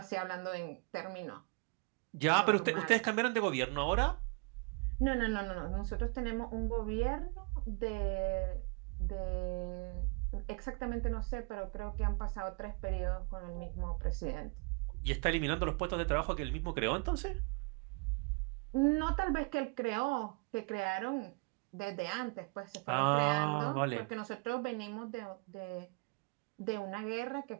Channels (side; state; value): left; quieter; 31.6 dB